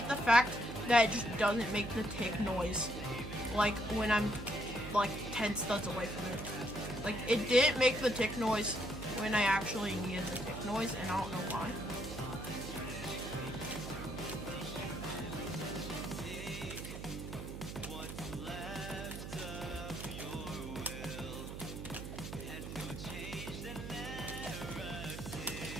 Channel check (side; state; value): right; noise; hum, 8 dB below the sound